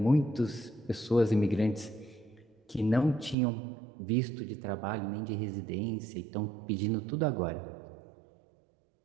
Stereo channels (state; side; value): drops out; left; at 3.4 s